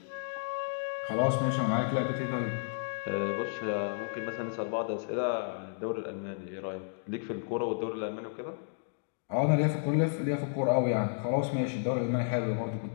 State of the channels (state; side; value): silent; right; digital silence